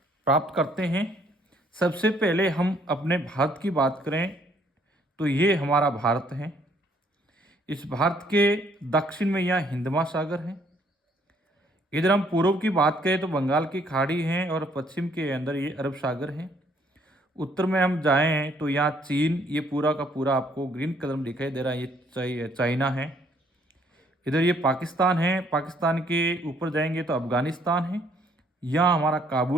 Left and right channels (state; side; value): normal; both; correlation 0.65